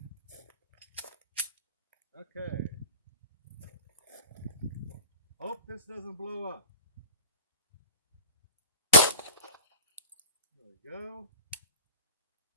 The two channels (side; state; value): both; inverted; correlation -0.38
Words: Okay. Hope this doesn't blow up. There we go.